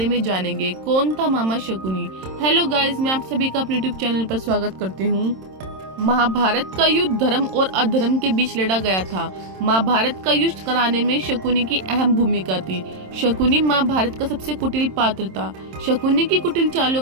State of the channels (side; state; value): left; late; 27 ms